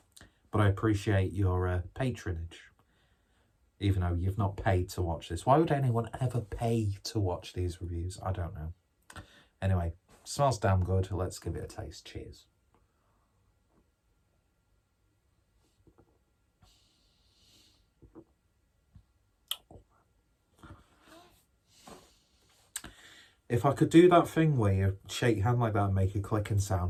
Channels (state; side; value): identical; both; correlation 1.00